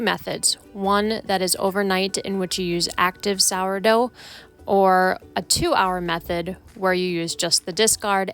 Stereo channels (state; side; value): identical; both; correlation 1.00